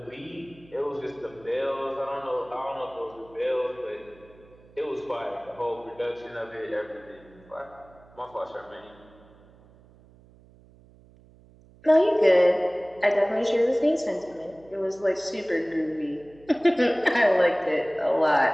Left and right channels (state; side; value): noise; right; hum, 26 dB below the sound